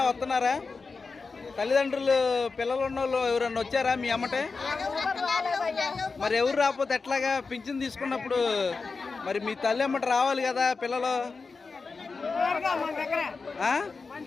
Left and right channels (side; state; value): right; quieter; 4.4 dB